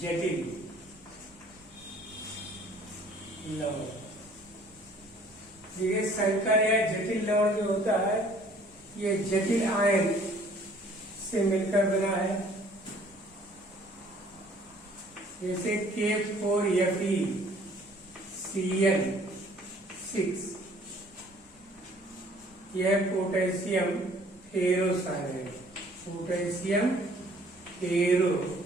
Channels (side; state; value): both; normal; correlation 0.56